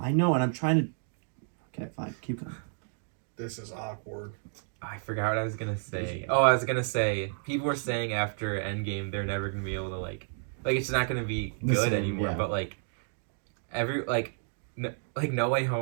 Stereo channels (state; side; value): silent; left; digital silence